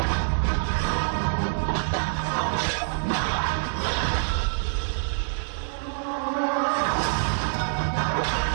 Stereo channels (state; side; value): silent; left; digital silence